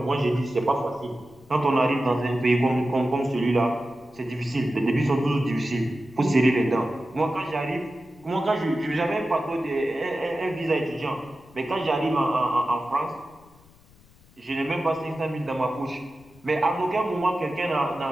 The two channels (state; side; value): noise; left; rumble, 27 dB below the sound